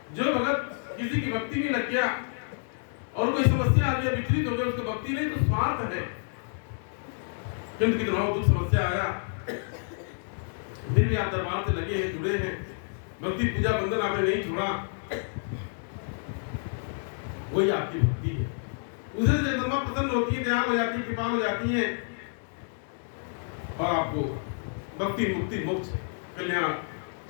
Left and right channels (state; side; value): silent; right; digital silence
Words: जो भगत किसी की भक्ति में लग गया और कोई समस्या आ गया, विचलित हो गया, उसको भक्ति नहीं तो स्वार्थ है। किंतु कितना दुख समस्या आया, फिर भी आप दरबार से लगे हैं, जुड़े हैं, भक्ति पूजा बंधन आपने नहीं छोड़ा, वही आपकी भक्ति है। उसे जगदम्बा प्रसन्न होती है, दयाल हो जाती है, कृपा हो जाती है और आपको भक्ति, मुक्ति, मोक्ष, कल्याण